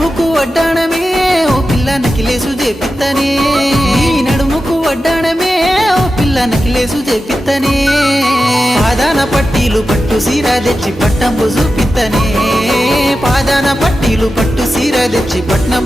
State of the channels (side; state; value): both; normal; correlation 0.92